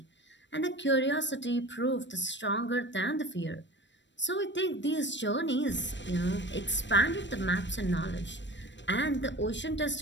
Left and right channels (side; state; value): right; late; 0.53 ms